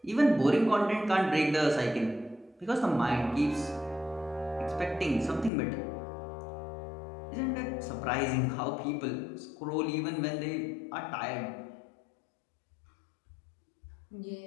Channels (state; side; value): drops out; right; at 5.5 s